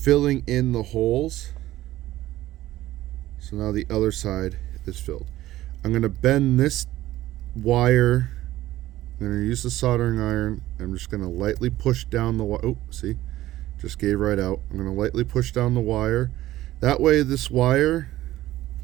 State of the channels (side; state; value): left; quieter; 15.3 dB